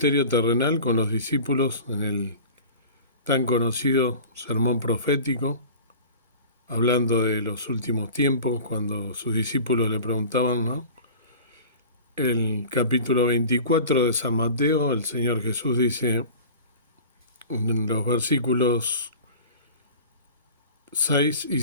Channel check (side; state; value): both; inverted; correlation -0.39